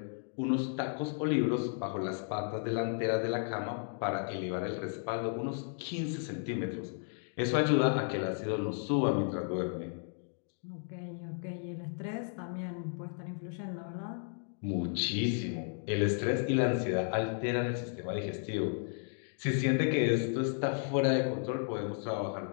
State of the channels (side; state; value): right; silent; 55 dB below the other